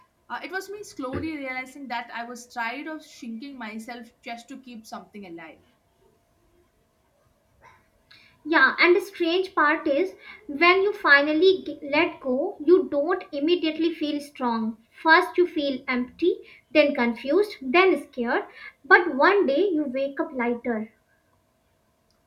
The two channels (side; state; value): both; identical; correlation 1.00